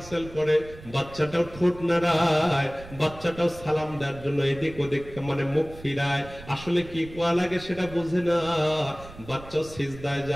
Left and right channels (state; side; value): noise; right; rumble, 17 dB below the sound